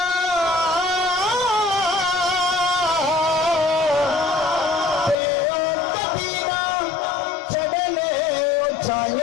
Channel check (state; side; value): drops out; right; at 5.2 s